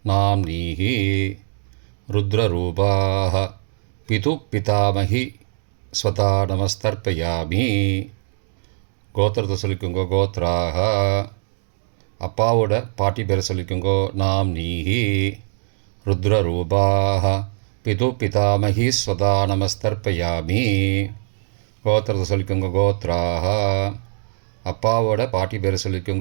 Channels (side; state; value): left; silent; digital silence